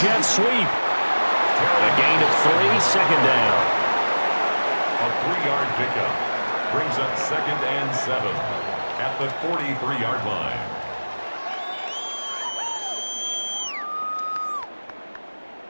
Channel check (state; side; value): inverted; both; correlation -1.00